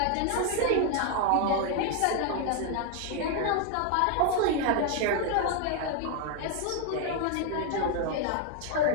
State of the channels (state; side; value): different; both; correlation 0.01